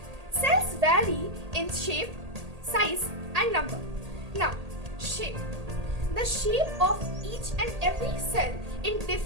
Cells vary in shape, size, and number. Now, shape. The shape of each and every cell in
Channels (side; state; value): left; late; 1.8 ms